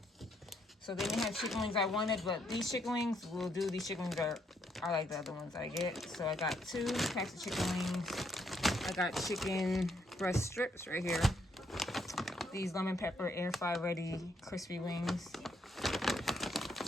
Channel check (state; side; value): normal; both; correlation 0.73